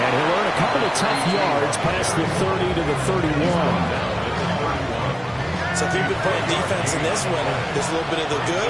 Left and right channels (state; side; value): identical; both; correlation 1.00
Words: he'll earn a couple of tough yards past the 30 to the 31. So if you've been playing defense in this one, there's a little bit of the